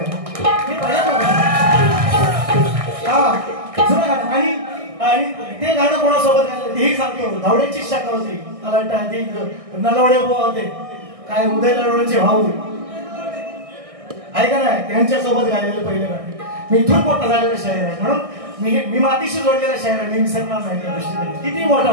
हा जुनं गाणं. आणि ते गाणं कोणासोबत गायलं तेही सांगतो. धावड्यांची शाखा होती मला वाटतं नलवडे होते काय उदय नलवड्यांचे भाऊ ऐका नाही त्यांच्यासोबत गायलेलं पहिलं गाणं. मी इथून मोठा झालेला शायर आहे म्हणून मी मातीशी जोडलेला शायर आहे. मी विसरणार नाही त्या दृष्टीने. किती मोठा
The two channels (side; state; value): left; late; 1.6 ms